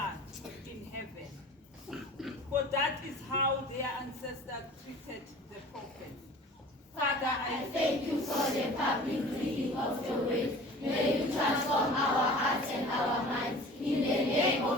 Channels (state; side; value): normal; both; correlation 0.43